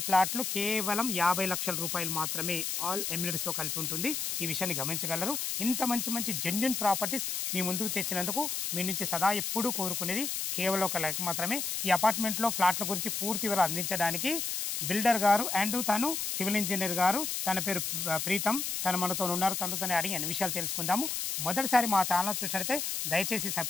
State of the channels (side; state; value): left; noise; hiss, 2 dB below the sound